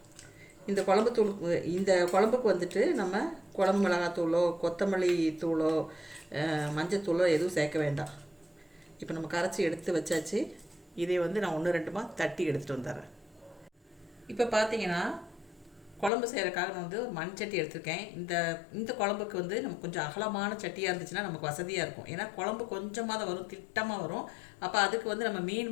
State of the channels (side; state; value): right; drops out; at 16.1 s